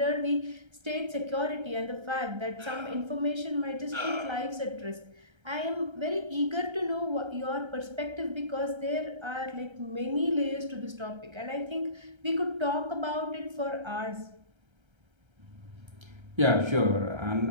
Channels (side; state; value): left; late; 1.3 ms